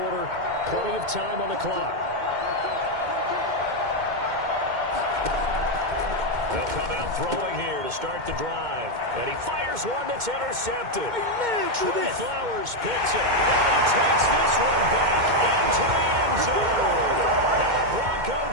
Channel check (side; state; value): left; late; 2.1 ms